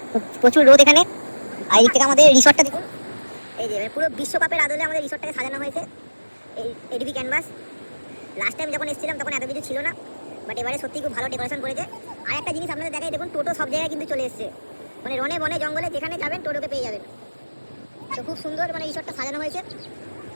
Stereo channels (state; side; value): inverted; both; correlation -1.00